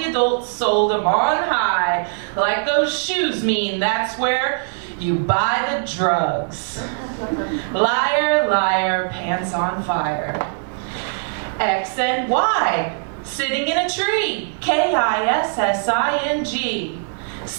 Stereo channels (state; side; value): silent; left; digital silence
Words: adults sold them on high. Like those shoes mean that's where you buy the drugs. Liar, liar, pants on fire. X and Y, sitting in a tree. KISSING.